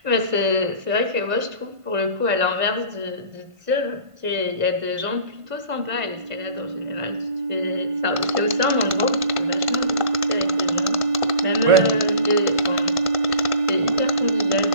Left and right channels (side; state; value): left; late; 1.5 ms